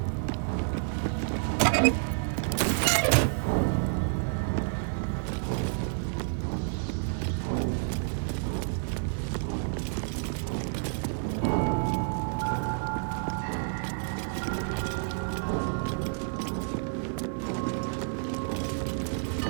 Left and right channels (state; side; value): silent; left; digital silence